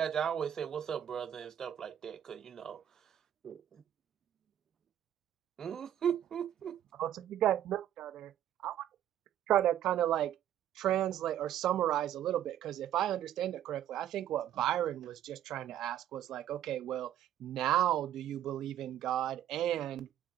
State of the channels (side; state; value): left; quieter; 11.1 dB